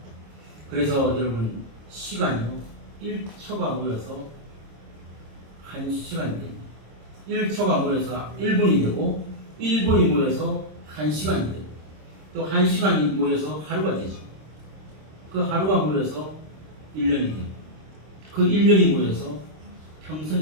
그래서 여러분, 시간이요, 1초가 모여서 1시간이 됩니다. 1초가 모여서 1분이 되고, 1분이 모여서 1시간이 되고, 또 1시간이 모여서 하루가 되죠. 그 하루가 모여서 1년이 되고, 그 1년이 모여서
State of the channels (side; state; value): left; late; 26 ms